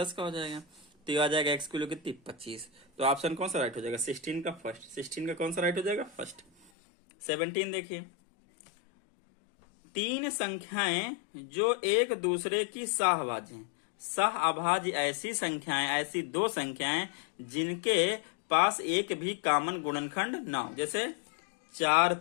का हो जाएगा, तो ये आ जाएगा x की वैल्यू कितनी 25। तो ऑप्शन कौन सा राइट हो जाएगा, 16 का फर्स्ट, 16 का कौन सा राइट हो जाएगा फर्स्ट। 17 देखिए, तीन संख्याएं जो एक दूसरे की सहअभाज्य हैं। सहअभाज्य ऐसी संख्याएं, ऐसी दो संख्याएं जिनके पास एक भी कॉमन गुणनखंड ना हो। जैसे 4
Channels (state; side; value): drops out; right; at 6.7 s